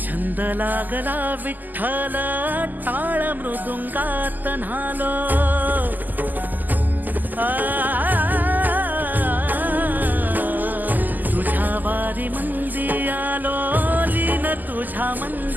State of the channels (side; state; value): left; late; 0.085 ms